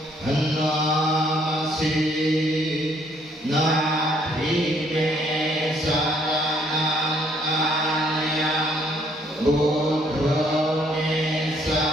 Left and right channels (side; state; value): both; normal; correlation 0.66